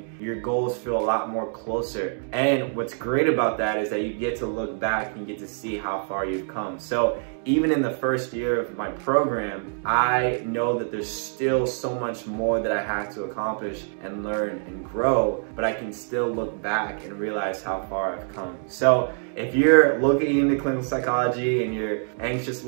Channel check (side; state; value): left; silent; 62 dB below the other